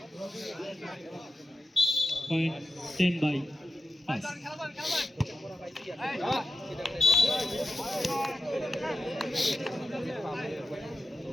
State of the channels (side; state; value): both; normal; correlation 0.91